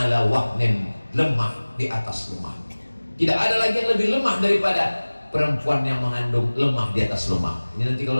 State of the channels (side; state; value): both; inverted; correlation -1.00